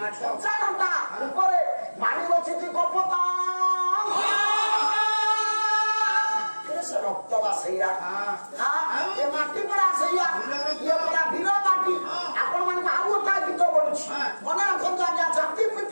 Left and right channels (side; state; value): both; inverted; correlation -1.00